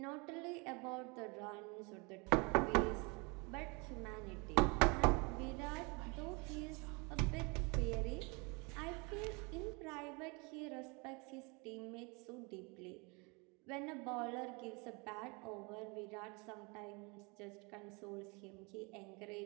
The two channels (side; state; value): left; quieter; 29.6 dB